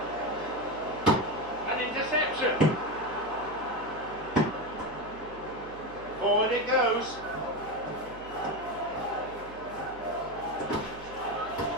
interception. Forward it goes.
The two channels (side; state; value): right; noise; hum, 18 dB below the sound